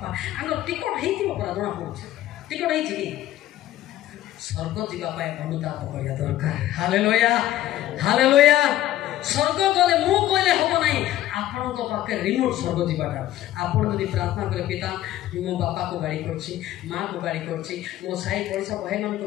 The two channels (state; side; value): quieter; right; 13.9 dB